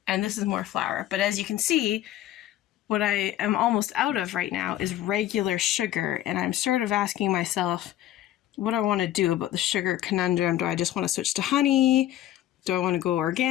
this is more flour. But as you can see, what I am almost out of right now is regular sugar, and I'm sort of asking myself what I want to do about the sugar conundrum. Do I just want to switch to honey? Do I want to go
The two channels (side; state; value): right; quieter; 13.1 dB